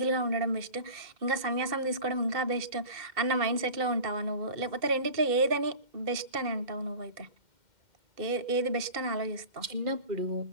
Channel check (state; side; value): late; left; 2.1 ms